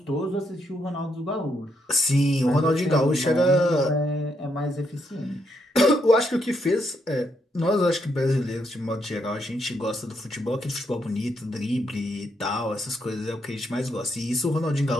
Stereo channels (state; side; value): normal; both; correlation 0.77